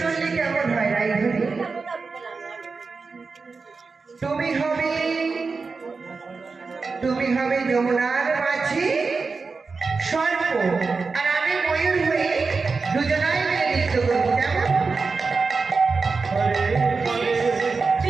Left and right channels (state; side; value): quieter; left; 4.4 dB